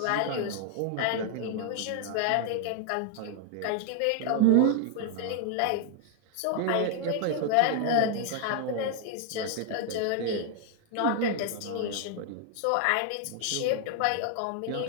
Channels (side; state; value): both; different; correlation 0.00